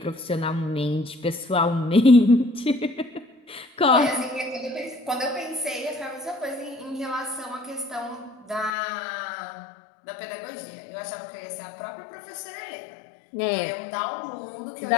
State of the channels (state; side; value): drops out; right; at 8.7 s